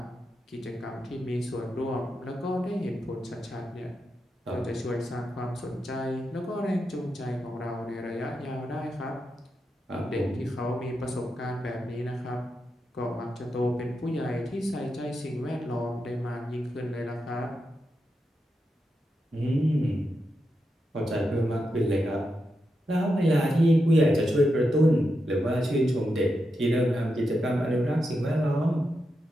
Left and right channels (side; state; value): both; normal; correlation 0.86